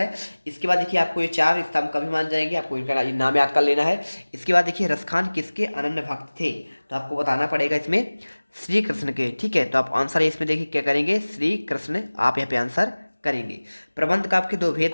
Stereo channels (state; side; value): inverted; both; correlation -1.00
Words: इसके बाद देखिए आपको ये चार स्तंभ कभी मान जाएंगे, आपको इनका नाम याद कर लेना है। इसके बाद देखिए रसखान किसके अनन्य भक्त थे, तो आपको बताना पड़ेगा इसमें श्री कृष्ण के। ठीक है, तो आप आंसर इसमें देखिए क्या करेंगे, श्री कृष्ण आप यहाँ पे आंसर करेंगे। प्रबंध काव्य के दो भेद